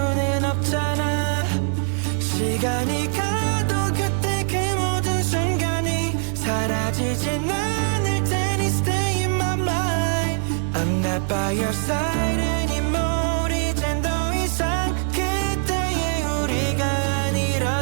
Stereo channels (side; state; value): left; silent; 64 dB below the other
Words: 없잖아 시간이 가도 그때 그 모든 순간이 사라지진 않을 테니 Stay in my mind I'm not by your side anymore 이젠 더 이상 그때의 우리가